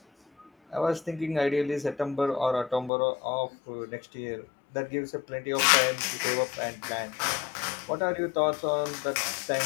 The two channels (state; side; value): drops out; right; at 2.9 s